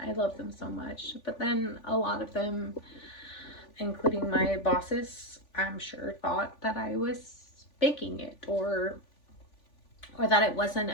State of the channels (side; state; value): right; late; 3.5 ms